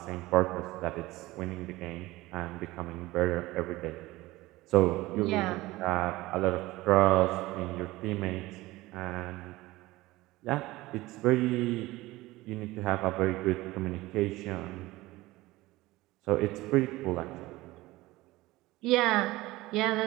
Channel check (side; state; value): left; quieter; 19.0 dB